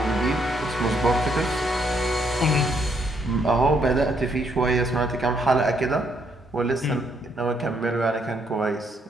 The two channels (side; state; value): both; normal; correlation 0.73